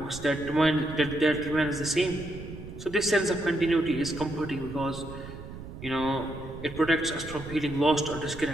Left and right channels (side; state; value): right; noise; rumble, 12 dB below the sound